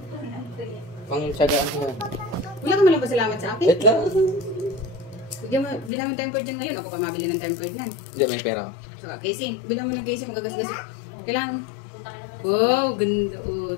Pangtsagaan ko yan. Wala ka malang pasalamat sa akin. Wait lang. Bilang mo tempered dyan ngayon. Ako pa mabili ng tempered nan. Hindi, may pera ko. So, casing. Bilang mo ng casing. Magagasgas. Kailangan. Wow, ganda. Oh,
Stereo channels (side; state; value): right; drops out; at 5.9 s